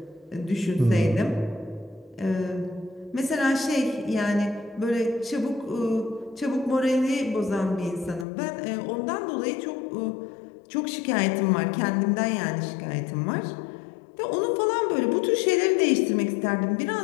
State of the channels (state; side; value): drops out; right; at 8.2 s